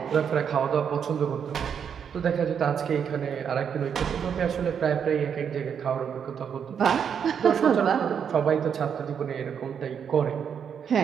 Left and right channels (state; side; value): quieter; left; 7.6 dB